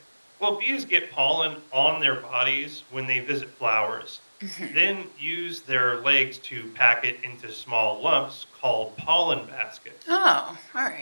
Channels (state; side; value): inverted; both; correlation -1.00